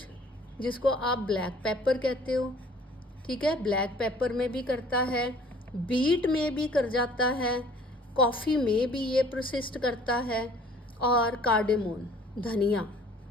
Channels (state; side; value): normal; both; correlation 0.54